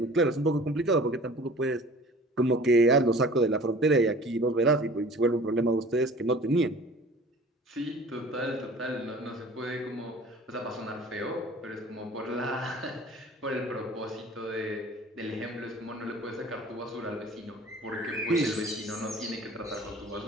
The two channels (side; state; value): both; normal; correlation 0.45